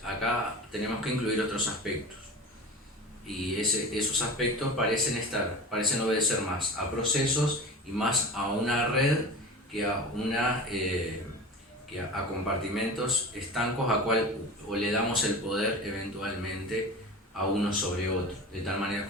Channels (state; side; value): normal; both; correlation 0.33